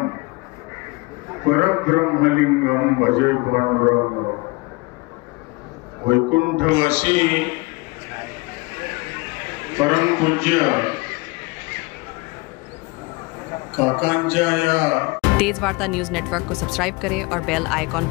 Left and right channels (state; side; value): quieter; right; 25.2 dB